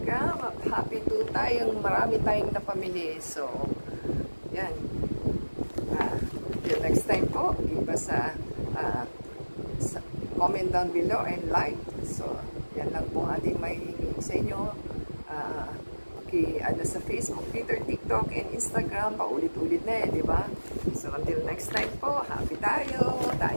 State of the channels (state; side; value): inverted; both; correlation -1.00